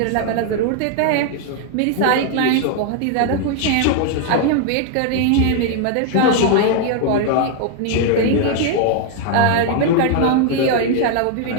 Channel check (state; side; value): different; both; correlation 0.00